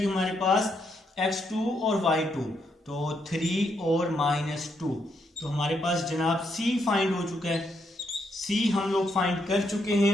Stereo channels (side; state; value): both; normal; correlation 0.77